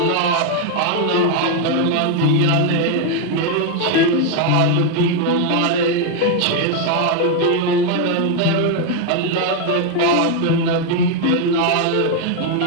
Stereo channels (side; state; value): both; different; correlation 0.01